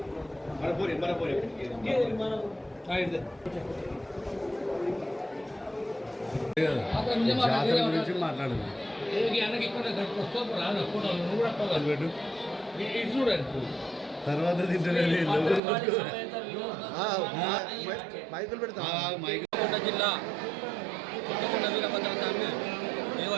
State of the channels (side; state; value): left; drops out; at 15.6 s